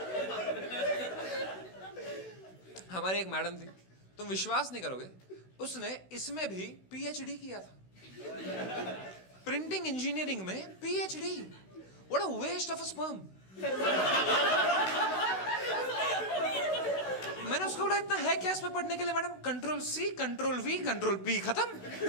हमारी एक मैडम थी, तुम विश्वास नहीं करोगे, उसने इसमें भी पीएचडी किया था। प्रिंटिंग इंजीनियरिंग में PhD. What a waste of a sperm. मैंने उसको बोला इतना है क्या इसमें पढ़ने के लिए? Madam control C, control V, control P, खत्म।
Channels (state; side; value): late; right; 16 ms